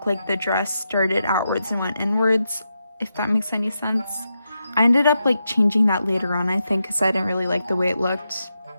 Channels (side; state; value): both; inverted; correlation -0.86